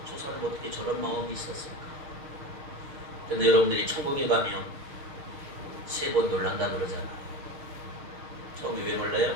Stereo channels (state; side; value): late; left; 6.6 ms